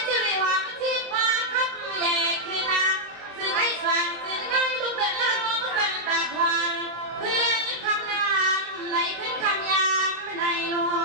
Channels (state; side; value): late; left; 23 ms